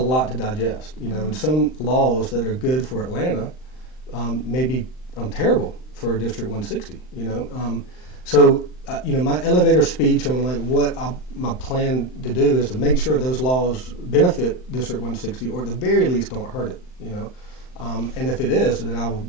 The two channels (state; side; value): late; right; 39 ms